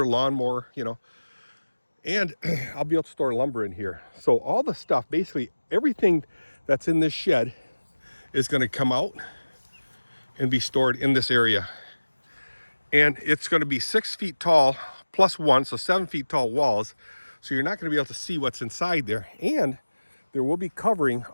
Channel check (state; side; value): inverted; both; correlation -1.00